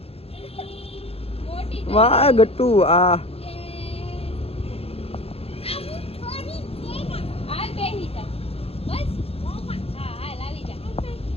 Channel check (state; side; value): late; right; 0.28 ms